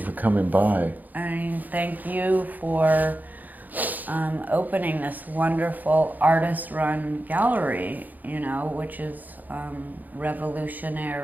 for coming by. Thank you for opening this wonderful artist-run gallery, which is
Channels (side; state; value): left; late; 0.083 ms